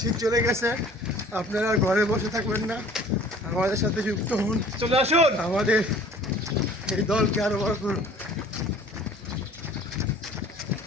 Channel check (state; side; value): normal; both; correlation 0.50